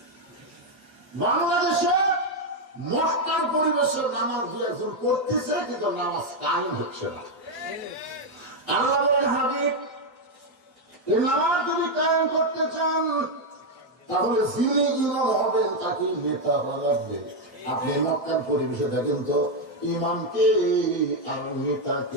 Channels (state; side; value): normal; both; correlation 0.03